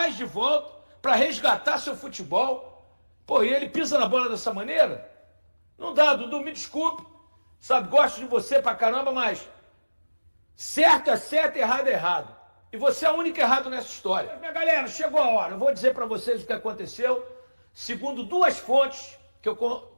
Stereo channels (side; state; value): both; inverted; correlation -1.00